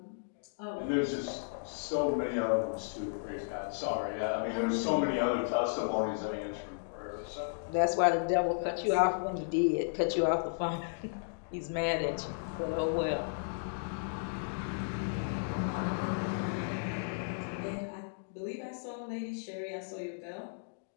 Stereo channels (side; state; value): right; silent; digital silence